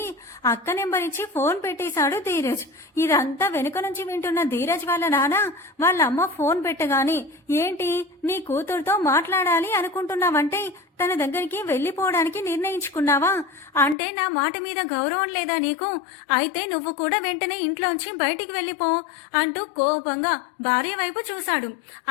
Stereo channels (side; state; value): right; drops out; at 14.0 s